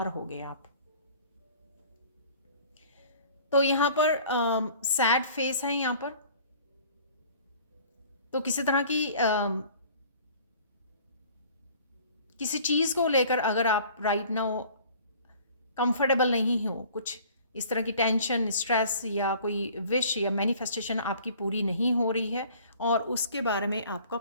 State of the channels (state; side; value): inverted; both; correlation -0.50